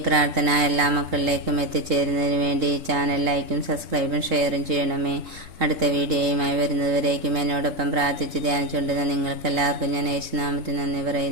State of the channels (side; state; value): left; late; 3.8 ms